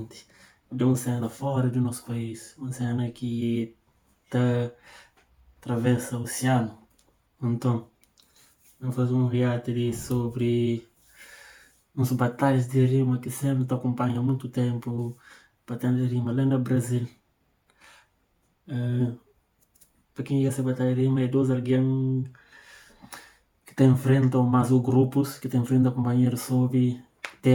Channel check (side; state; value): both; identical; correlation 1.00